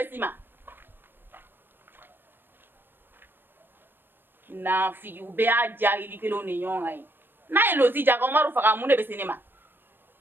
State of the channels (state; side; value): late; left; 0.096 ms